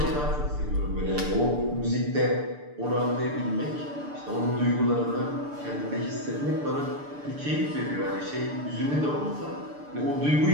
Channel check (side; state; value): left; late; 6.8 ms